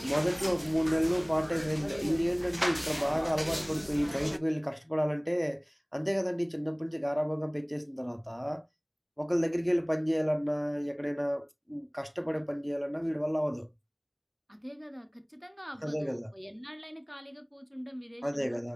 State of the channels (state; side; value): identical; both; correlation 1.00